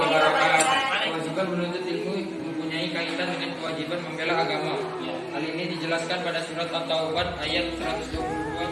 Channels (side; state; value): both; identical; correlation 1.00